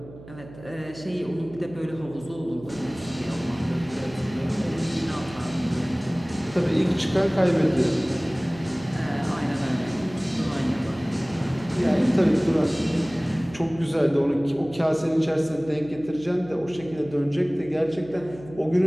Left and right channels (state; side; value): noise; right; hum, 17 dB below the sound